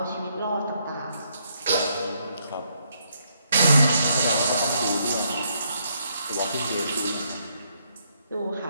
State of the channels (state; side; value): inverted; both; correlation -0.74